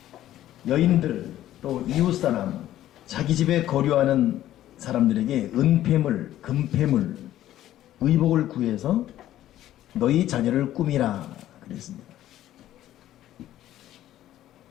여인들 또 이웃사람 자기 집에 거류하는 사람들에게 은폐물, 금폐물, 의복을 구해서 너희 자녀를 꾸미라 그랬습니다.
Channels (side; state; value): right; quieter; 13.1 dB